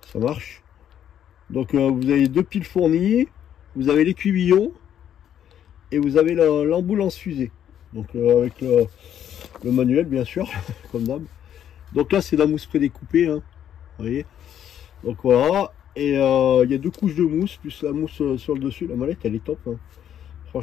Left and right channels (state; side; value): quieter; right; 10.0 dB